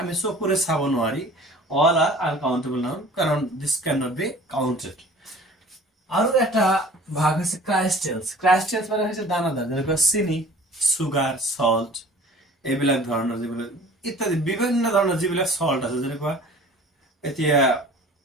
আমি চকুৰে চাব নোৱাৰি, অল আৰ আনকাউন্টেবল নাউন, কাৰণ this can not be counted. আৰু এটা ভাগ হৈছে ক্ৰাইস্টেলস। ক্ৰাইস্টেলস মানে হৈছে দানাদাৰ, যেনেকুৱা চিনি, সুগাৰ, সল্ট, এইবিলাক ধৰণৰ যিবিলাক ইত্যাদি বিভিন্ন ধৰণৰ যিবিলাক সল্ট আছে, যেনেকুৱা এতিয়া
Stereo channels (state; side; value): normal; both; correlation 0.46